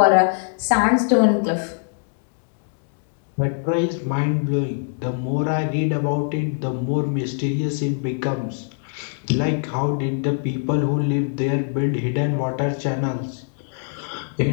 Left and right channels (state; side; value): silent; right; 64 dB below the other